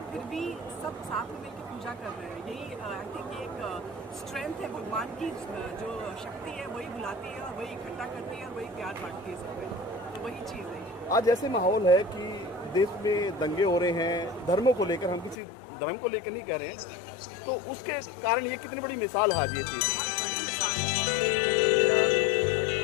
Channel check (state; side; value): drops out; right; at 15.4 s